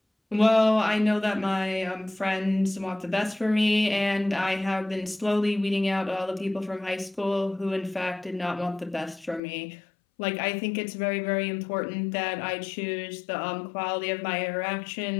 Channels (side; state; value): right; drops out; at 9.4 s